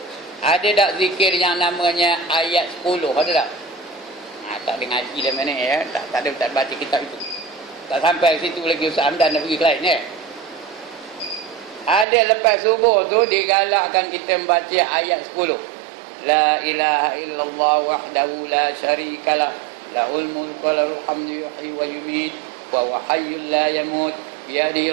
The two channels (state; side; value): drops out; left; at 12.1 s